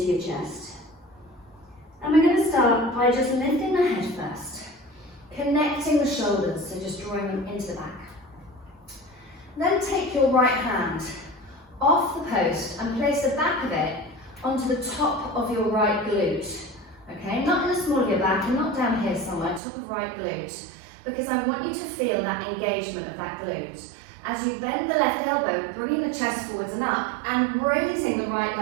your chest. And we're going to start by just lifting the head first. Connecting the shoulders, so just drawing them into the back. Then take your right hand off the post and place the back of it onto the top of your right glute. Okay, not in the small of your back and not down here somewhere, top of right glute, because I want you to feel that engagement of that glute. As you bend the left elbow, bringing the chest forwards and up, and raising the right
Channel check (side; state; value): left; drops out; at 19.6 s